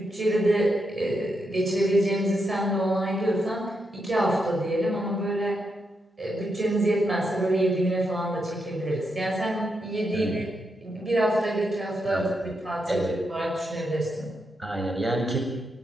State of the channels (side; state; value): both; normal; correlation 0.83